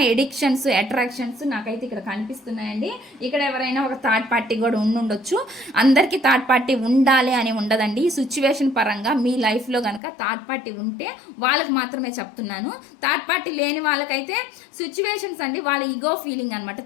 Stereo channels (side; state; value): right; drops out; at 10.0 s